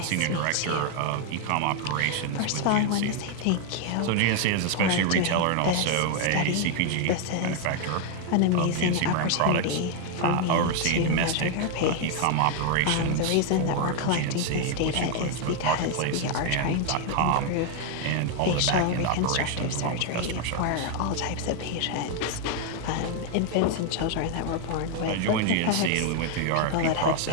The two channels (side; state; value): both; different; correlation 0.00